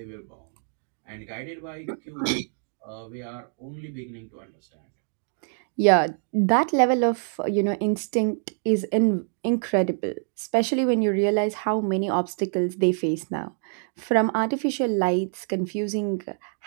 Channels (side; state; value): left; silent; 61 dB below the other